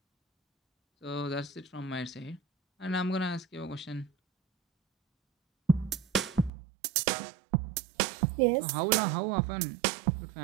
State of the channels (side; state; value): left; drops out; at 6.5 s